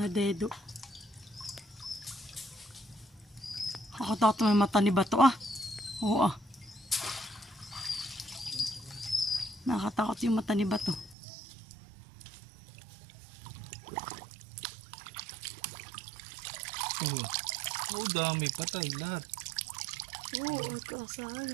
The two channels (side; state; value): left; drops out; at 11.2 s